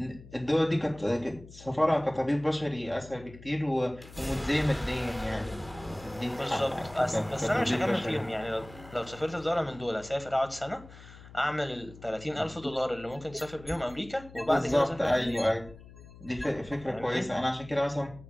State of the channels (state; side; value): noise; left; hum, 19 dB below the sound